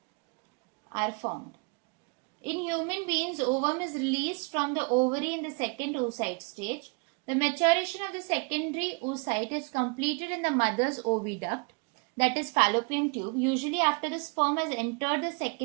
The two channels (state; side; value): quieter; left; 34.1 dB